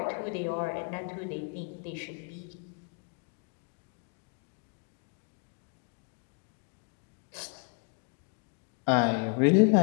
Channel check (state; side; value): quieter; right; 38.1 dB